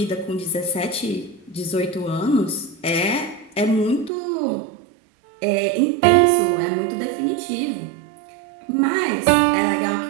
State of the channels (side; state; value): left; drops out; at 4.1 s